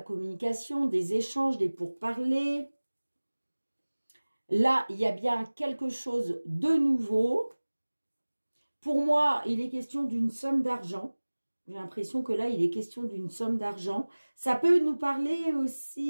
communication, des échanges, des pourparlers. Là, il y a bien quelque chose de nouveau. Pour moi, il est question d'une somme d'argent. J'ai l'impression que là, il est question d'une somme d'argent. Ça peut nous parler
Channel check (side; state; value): both; inverted; correlation -1.00